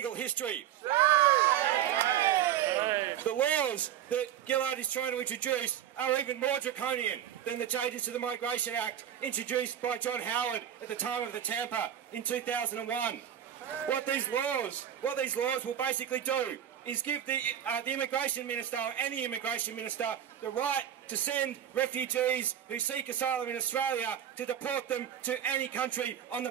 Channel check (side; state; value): left; quieter; 10.3 dB